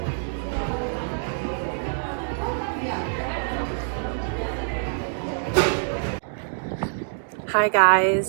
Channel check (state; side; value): silent; left; digital silence